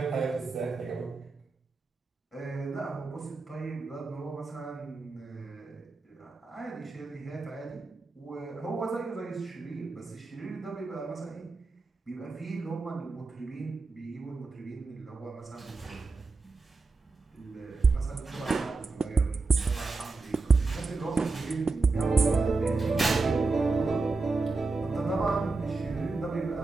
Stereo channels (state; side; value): quieter; left; 3.8 dB